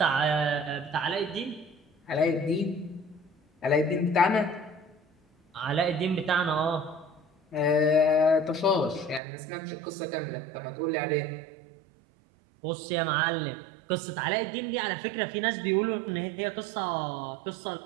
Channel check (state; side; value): drops out; left; at 9.2 s